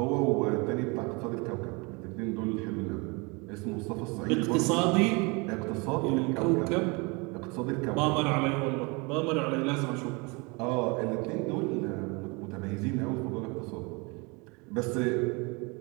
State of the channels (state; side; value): quieter; left; 28.7 dB